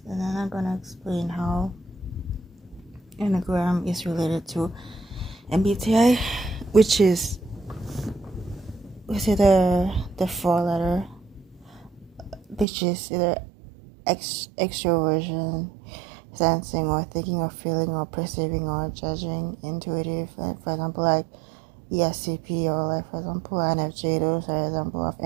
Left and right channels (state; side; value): drops out; left; at 12.7 s